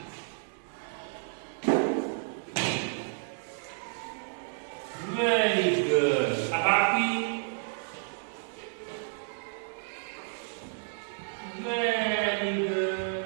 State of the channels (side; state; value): left; silent; digital silence